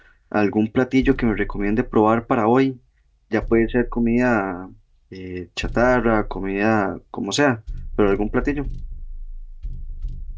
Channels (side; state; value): both; identical; correlation 1.00